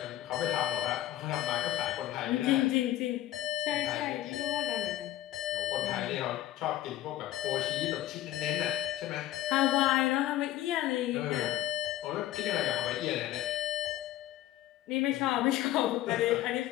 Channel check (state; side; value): quieter; right; 13.8 dB